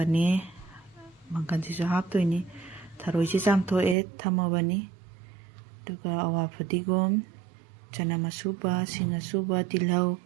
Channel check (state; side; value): drops out; left; at 4.0 s